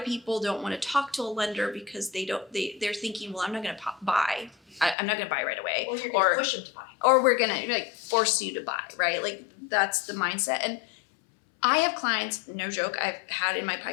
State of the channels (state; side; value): drops out; right; at 5.0 s